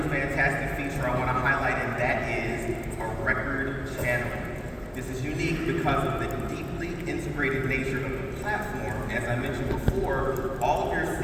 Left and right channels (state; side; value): identical; both; correlation 1.00